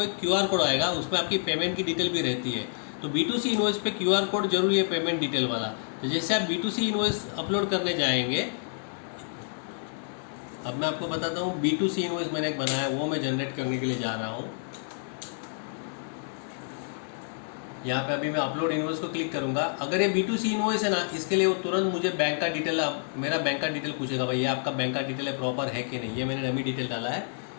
एक QR कोड आएगा, उसमें आपकी पेमेंट की डिटेल भी रहती है। तो B2C इनवॉइस पे QR कोड जरूरी है, पेमेंट डिटेल वाला। तो जैसे आप B2C इनवॉइस अपलोड करने जाएंगे, अब मैं आपको बताता हूँ B2C इनवॉइस मैंने एक बनाया, वो मैं जनरेट करने के लिए जा रहा हूँ। यहाँ पे अभी मैं अपलोड इनवॉइस को क्लिक करूँगा। अगर ये B2C इनवॉइस है ना, इसके लिए वो तुरंत मुझे बैंक का डिटेल, मेरा बैंक का डिटेल पूछेगा, भाई ये आपका बैंक का डिटेल है प्रॉपर है कि नहीं। ये मैंने डमी डिटेल डाला है,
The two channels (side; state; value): right; silent; digital silence